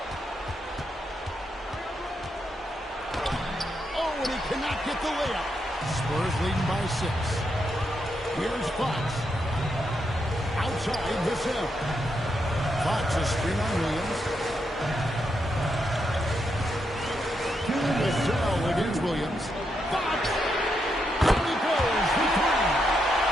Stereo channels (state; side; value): normal; both; correlation 0.82